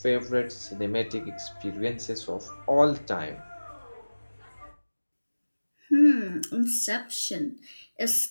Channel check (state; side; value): inverted; both; correlation -1.00